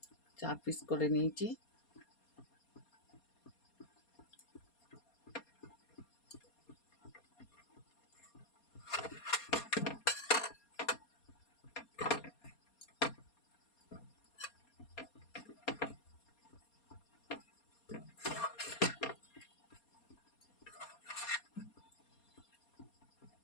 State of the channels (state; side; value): late; right; 4.2 ms